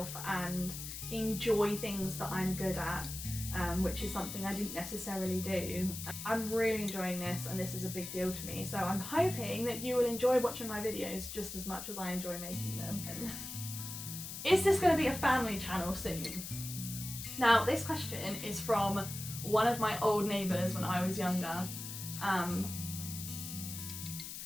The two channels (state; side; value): noise; left; hiss, 8 dB below the sound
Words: and enjoy things that I'm good at. which is something I didn't necessarily do. I'm really enjoying this, and this is a big deal to me, so I'm hoping that you will enjoy watching my videos just as much as I enjoy making them. Is this going to be a family channel soon? Now, this question is from one of my old neighbours when I was younger.